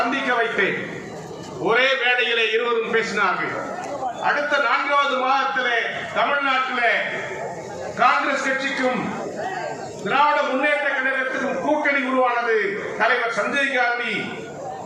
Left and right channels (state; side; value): identical; both; correlation 1.00